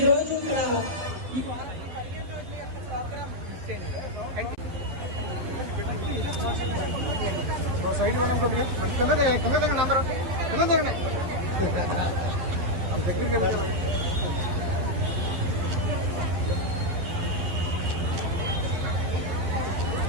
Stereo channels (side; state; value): left; late; 12 ms